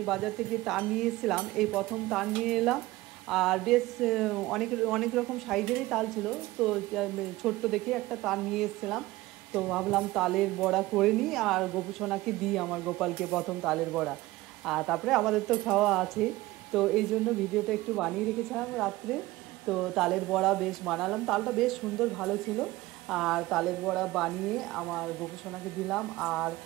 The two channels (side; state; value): left; quieter; 18.8 dB